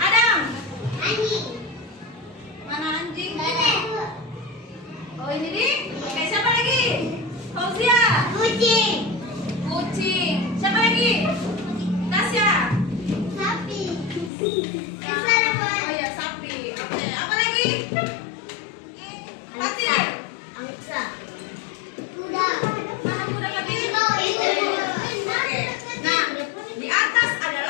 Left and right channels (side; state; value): right; drops out; at 14.3 s